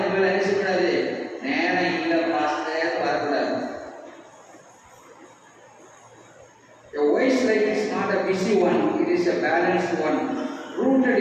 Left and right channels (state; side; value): identical; both; correlation 1.00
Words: நினைச்சுக்கூடாது, நேரம் இல்லை பாஸ்டர் வரக்கூடாது. A wise life is not a busy one, it is a balanced one, rooted